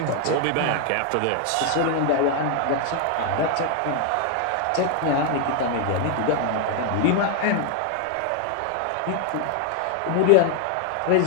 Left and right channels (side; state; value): both; different; correlation 0.01